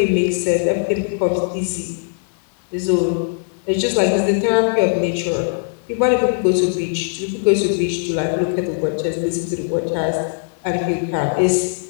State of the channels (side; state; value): right; silent; digital silence